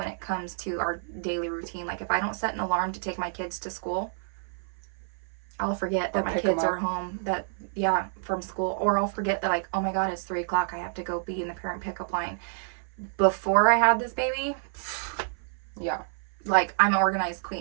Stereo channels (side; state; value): left; silent; 56 dB below the other